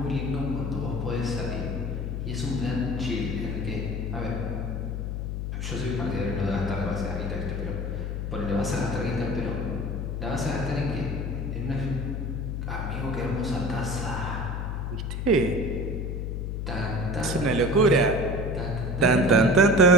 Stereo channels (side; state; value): left; noise; hum, 3 dB below the sound